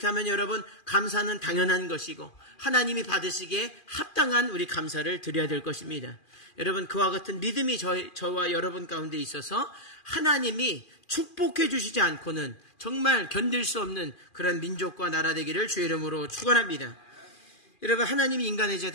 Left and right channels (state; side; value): late; right; 2.4 ms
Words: 여러분 감사는 당연한 것이고 하나님이 받으시기에 합당한 우리 감사를 드려야 될 것입니다. 여러분 그와 같은 믿음이 저와 여러분 가운데 있어서 하나님이 축복해 주시지 않고는 정말 견딜 수 없는 그런 민족과 나라 되기를 주의 이름으로 축원합니다. 여러분 하나님이 인간의 죄